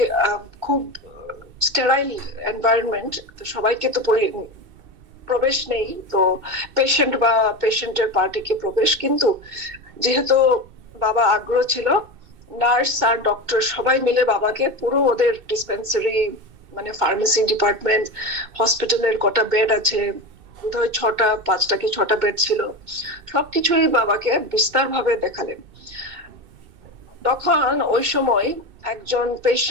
খুব স্টেরাইল এনভায়রনমেন্ট, তো সবাইকে তো প্রবেশ নেই, তো পেশেন্ট বা পেশেন্টের পার্টিকে প্রবেশ। কিন্তু যেহেতু বাবা আগ্রহ ছিল, নার্স আর ডক্টর সবাই মিলে বাবাকে পুরো ওদের ডিসপেন্সারি মানে ফার্মেসি ডিপার্টমেন্ট, হসপিটালের কটা বেড আছে, বোধহয় 5টা কি 6টা বেড ছিল, সবকিছুই বাবাকে বিস্তার ভাবে দেখালেন। তখন ওই সময় একজন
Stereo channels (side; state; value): left; late; 2.7 ms